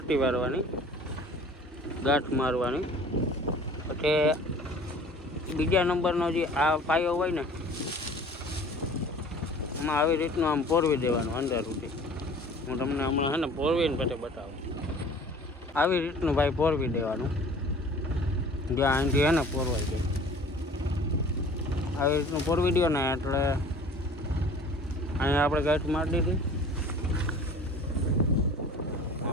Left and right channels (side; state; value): both; normal; correlation 0.47